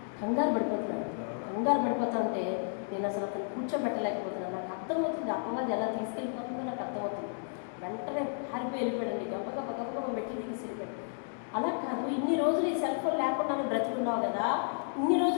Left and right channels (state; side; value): silent; right; digital silence